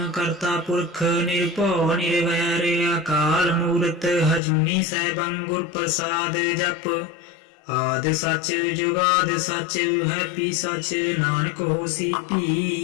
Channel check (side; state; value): right; drops out; at 4.4 s